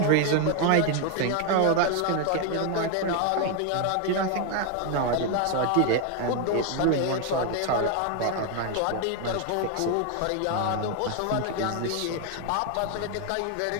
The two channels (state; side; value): different; both; correlation 0.01